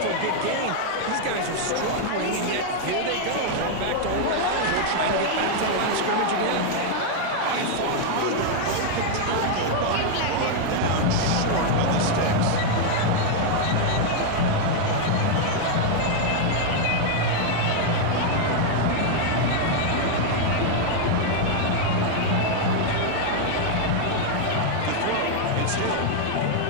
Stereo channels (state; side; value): different; both; correlation 0.00